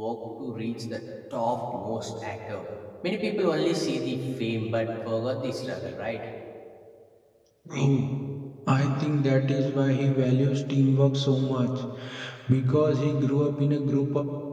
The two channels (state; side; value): identical; both; correlation 1.00